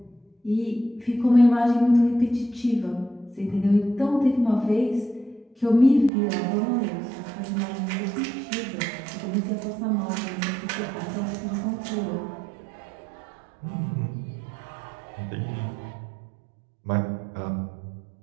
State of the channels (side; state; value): left; drops out; at 6.1 s